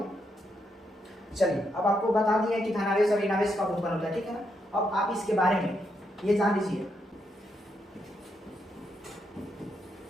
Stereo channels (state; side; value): normal; both; correlation 0.80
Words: चलिए अब आपको बता दिया कि धनावेश और ऋणावेश कब उत्पन्न होता है, ठीक है ना। अब आप इसके बारे में ये जान लीजिए,